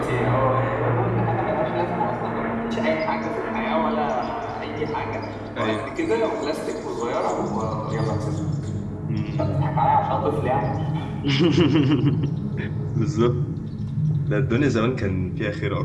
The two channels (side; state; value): both; identical; correlation 1.00